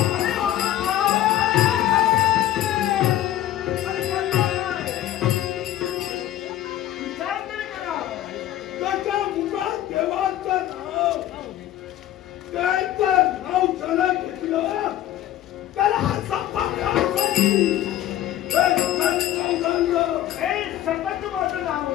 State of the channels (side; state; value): right; quieter; 12.8 dB